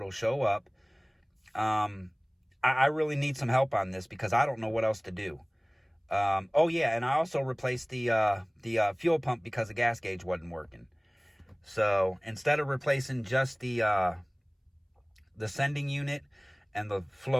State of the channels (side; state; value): both; identical; correlation 1.00